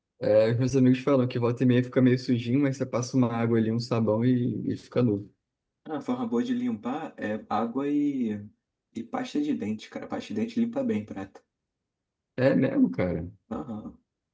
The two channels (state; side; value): identical; both; correlation 1.00